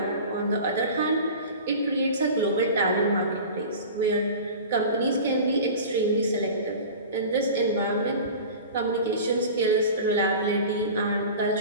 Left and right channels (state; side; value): inverted; both; correlation -0.36